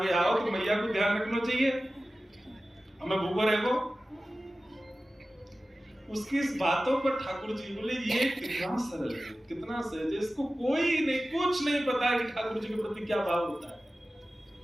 आओ तो मैया को ध्यान रखना चाहिए, हमें भूखो रहेगो। उसकी इस बातों पर ठाकुर जी बोले ये कितना सरल है, कितना सहज है, इसको कोई नहीं, कुछ नहीं पता है कि ठाकुर जी के प्रति क्या भाव होता है।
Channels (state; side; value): normal; both; correlation 0.96